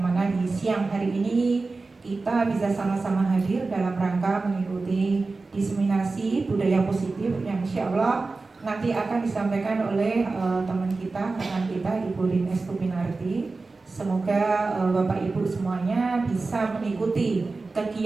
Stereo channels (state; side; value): quieter; left; 3.7 dB